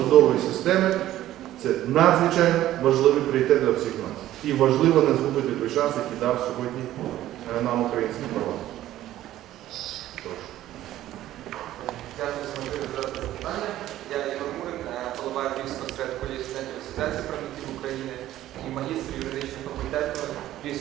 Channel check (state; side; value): quieter; left; 13.8 dB